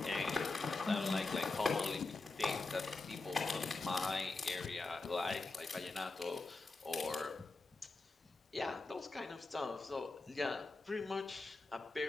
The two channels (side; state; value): right; quieter; 3.5 dB